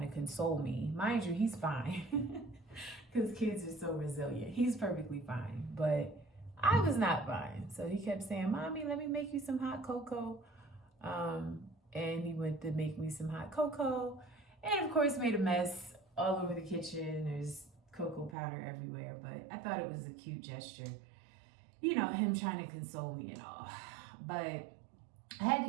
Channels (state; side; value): drops out; left; at 18.4 s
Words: to console me. Mind you, he's fine because kids are so resilient. He's perfectly fine, but I was not fine. So he kept saying, Mommy, let me make you some hot cocoa. And he went to make me some hot cocoa and of course made a mess all over the kitchen. There's cocoa powder everywhere, but I thought it was a cute gesture. Him trying to console me and all. But I had